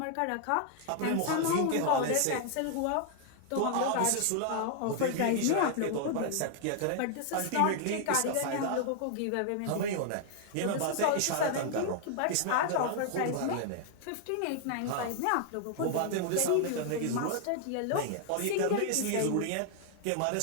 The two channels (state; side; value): different; both; correlation 0.00